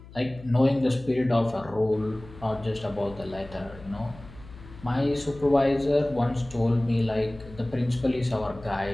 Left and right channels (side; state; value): left; noise; hum, 19 dB below the sound